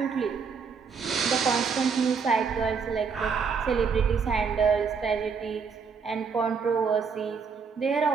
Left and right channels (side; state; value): left; quieter; 5.7 dB